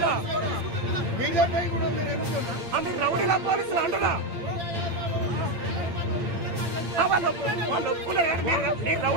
రౌడీలా పోలీసులు అంటున్నా వాళ్ళు ఒప్పుకున్నారు. మీరు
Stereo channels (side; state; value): left; late; 8.7 ms